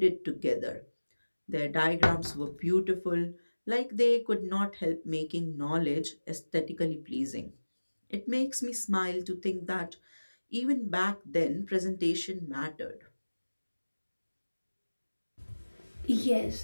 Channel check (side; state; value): both; inverted; correlation -1.00